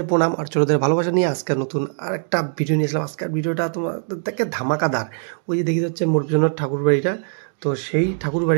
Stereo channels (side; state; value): left; silent; digital silence